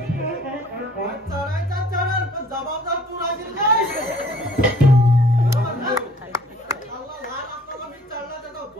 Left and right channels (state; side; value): normal; both; correlation 0.55